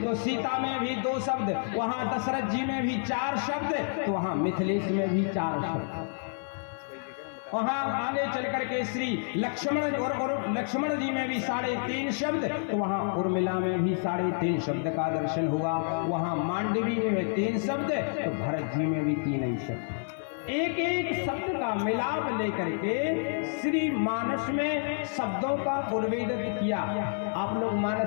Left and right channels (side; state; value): right; silent; 57 dB below the other